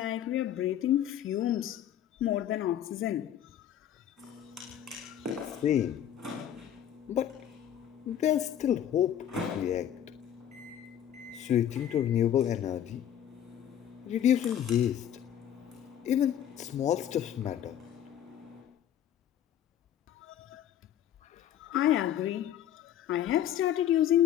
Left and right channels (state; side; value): quieter; right; 10.5 dB